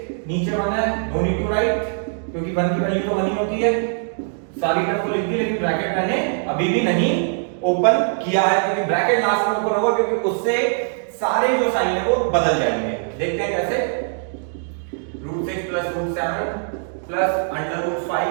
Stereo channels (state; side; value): silent; left; digital silence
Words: नीचे 1 है, नो नीड टू राइट क्योंकि 1 की वैल्यू तो 1 ही होती है, सारी टर्म को लिख दी, लेकिन ब्रैकेट मैंने अभी भी नहीं ओपन किया है क्योंकि ब्रैकेट लास्ट में ओपन होगा क्योंकि उससे सारे जो साइन है वो बदल जाएंगे। देखते हैं कैसे, √6 प्लस √7 प्लस